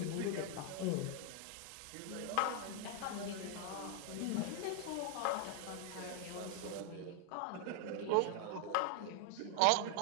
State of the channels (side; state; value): both; different; correlation 0.00